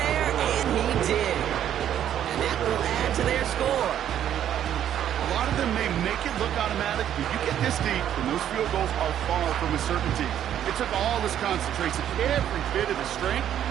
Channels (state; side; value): quieter; left; 10.4 dB